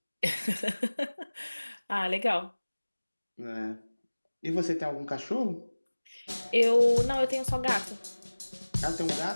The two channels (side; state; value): both; inverted; correlation -1.00